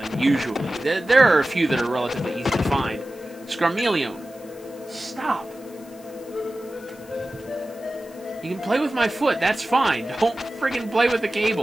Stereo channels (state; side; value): noise; left; hiss, 24 dB below the sound